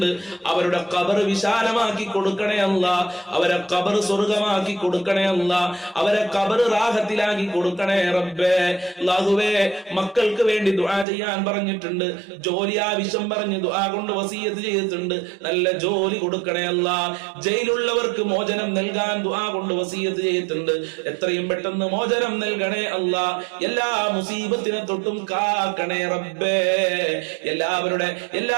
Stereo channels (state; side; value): drops out; left; at 11.1 s